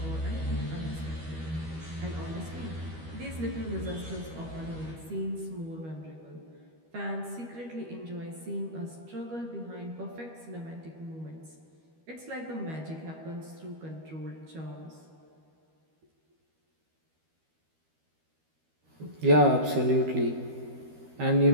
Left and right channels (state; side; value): late; left; 13 ms